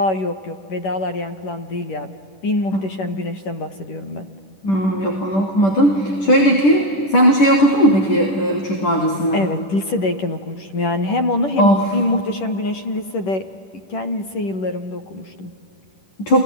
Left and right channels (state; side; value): late; right; 10 ms